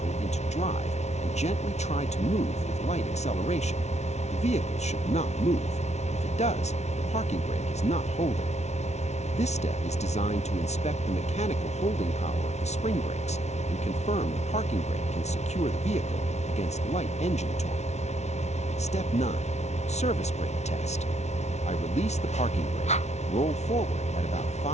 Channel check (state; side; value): late; right; 0.32 ms